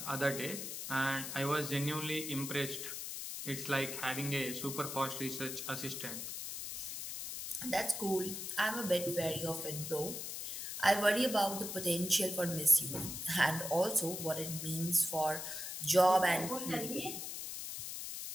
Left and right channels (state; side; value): noise; left; hiss, 6 dB below the sound